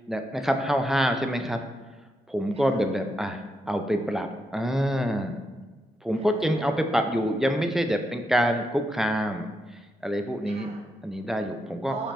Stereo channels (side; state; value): both; normal; correlation 0.82